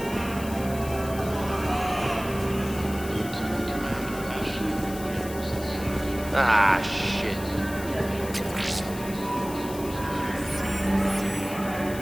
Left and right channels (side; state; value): left; noise; hiss, 14 dB below the sound